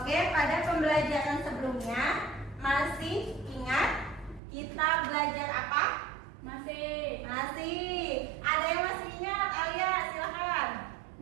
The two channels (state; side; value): drops out; left; at 4.4 s